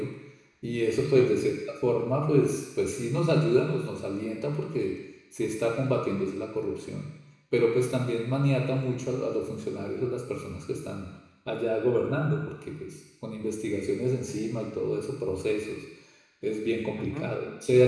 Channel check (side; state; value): both; identical; correlation 1.00